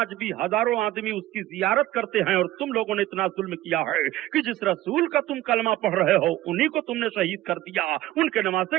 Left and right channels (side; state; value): left; quieter; 15.4 dB